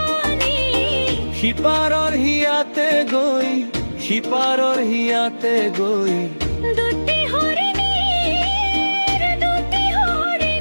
সিপারর হিয়াতে গই সিপারর হিয়াতে গই দুটি হরিণী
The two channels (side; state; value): both; inverted; correlation -1.00